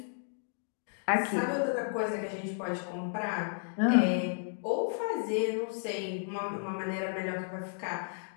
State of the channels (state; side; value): silent; right; digital silence